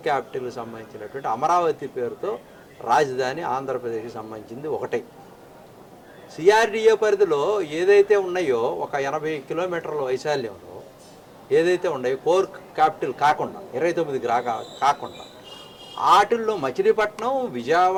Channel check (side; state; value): both; identical; correlation 1.00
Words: క్యాపిటల్కి సంబంధించినటువంటి అమరావతి పేరుతో రాజధాని ఆంధ్రప్రదేశ్కి సంబంధించింది ఒకటే. సిఆర్డిఏ పరిధిలో ఏదైతే ఉన్నాయో ఒక 80 కిలోమీటర్ల వైశాల్యంలో ఏదైతే ఉన్నాయో కోర్ క్యాపిటల్ కాకుండా 29 కాకుండా వాటిల్లో మచిలీపట్నం,